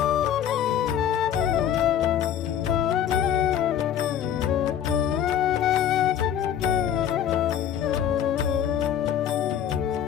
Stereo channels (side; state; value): right; quieter; 9.7 dB